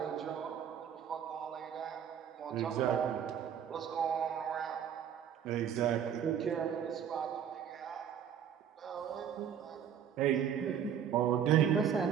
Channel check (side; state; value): left; quieter; 8.7 dB